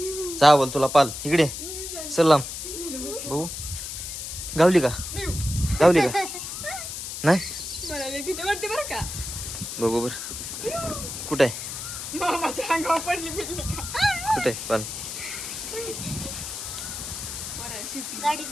जा बोल तुला पाल इकडे. सलाम बघू. गावली का? गावली का? नाही बघू बर. कुठं आहे? कुठे आहे पाल?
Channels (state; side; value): noise; left; hiss, 7 dB below the sound